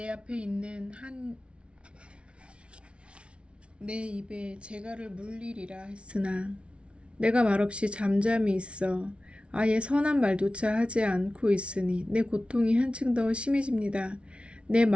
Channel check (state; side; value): late; left; 0.059 ms